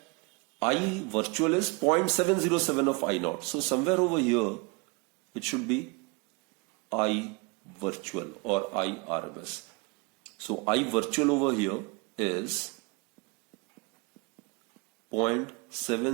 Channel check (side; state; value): left; quieter; 28.6 dB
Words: I virtual is 0.707 of I naught. So somewhere over here, it should be I virtual or I RMS. So I virtual over here is